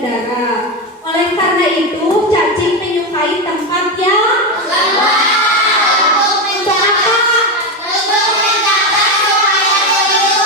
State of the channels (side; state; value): both; normal; correlation 0.12